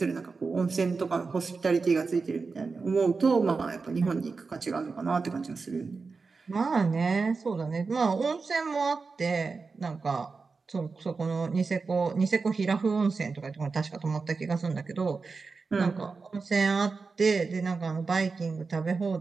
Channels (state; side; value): quieter; left; 4.5 dB